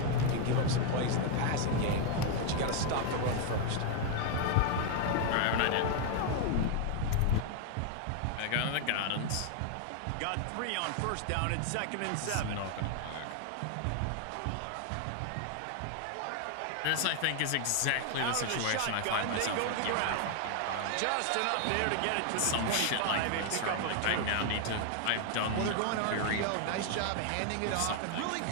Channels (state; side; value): different; both; correlation 0.00